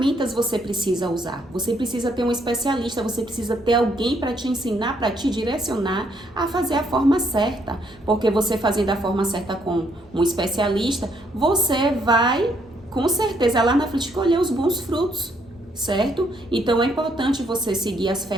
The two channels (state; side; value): normal; both; correlation 0.71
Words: você precisa usar? Você precisa ter um especialista, você precisa ter alguém para te ensinar, para te direcionar a fazer a forma certa. Porque você fazendo a forma certa com um especialista, você vai, com certeza, lá na frente colher os bons frutos, certo? Então é importante você seguir as